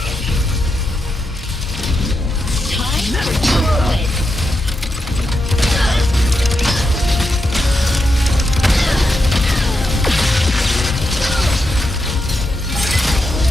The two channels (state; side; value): normal; both; correlation 0.86